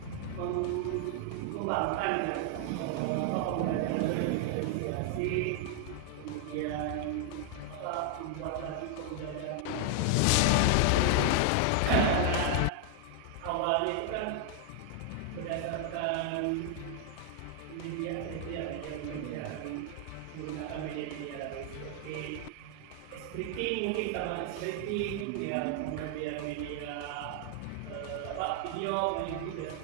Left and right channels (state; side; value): different; both; correlation 0.00